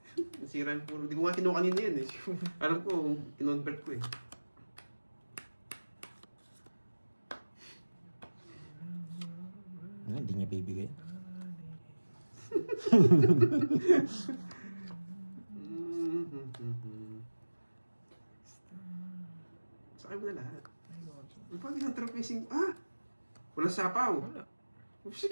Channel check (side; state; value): both; inverted; correlation -1.00